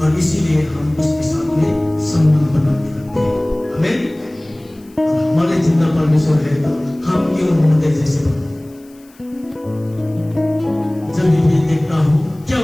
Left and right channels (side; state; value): left; noise; hiss, 29 dB below the sound